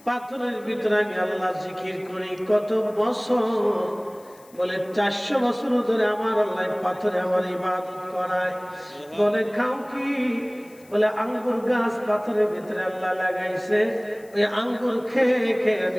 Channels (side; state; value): left; noise; hiss, 27 dB below the sound